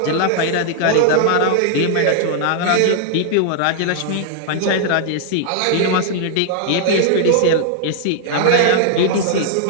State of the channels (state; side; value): different; both; correlation -0.01